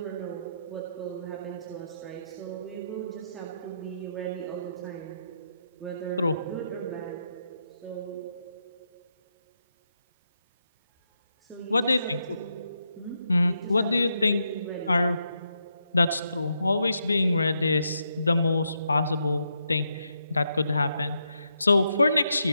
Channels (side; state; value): both; inverted; correlation -0.81